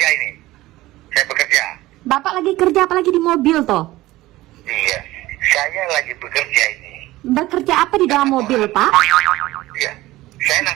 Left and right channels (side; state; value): left; quieter; 17.6 dB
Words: ini. Saya bekerja. Bapak lagi kerja apalagi di mobil toh? Iya. Saya lagi bekerja ini. Bekerja apa di dalam mobil Pak? Iya. Saya